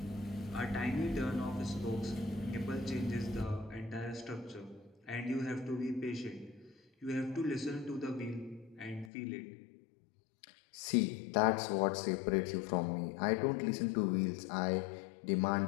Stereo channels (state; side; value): drops out; right; at 9.1 s